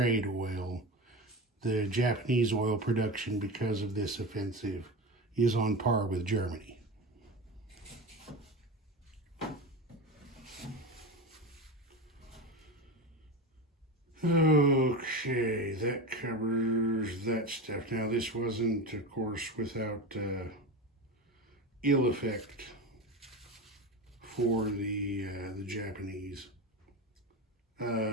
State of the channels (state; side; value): normal; both; correlation 0.25